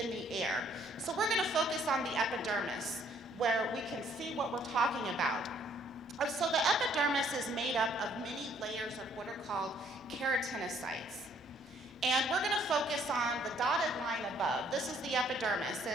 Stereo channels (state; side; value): normal; both; correlation 0.64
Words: the air. So we're going to focus on the epidermis, where we can see what we're talking about. So the epidermis is made up of many layers of what are called keratinocytes. And we're going to focus on the dotted line above. This is the epidermis.